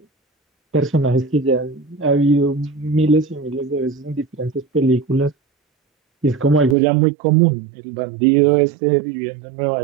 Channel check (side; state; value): left; drops out; at 6.8 s